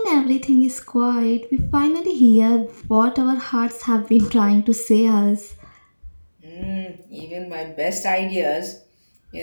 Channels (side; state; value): both; inverted; correlation -1.00